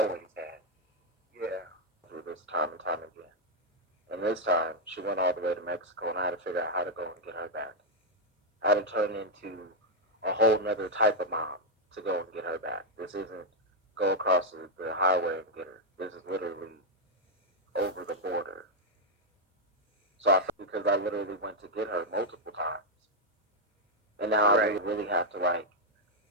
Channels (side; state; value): both; normal; correlation -0.01